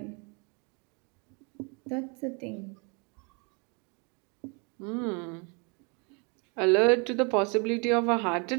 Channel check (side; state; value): left; quieter; 33.6 dB